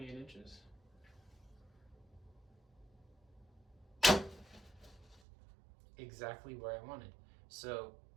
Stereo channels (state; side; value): drops out; left; at 5.2 s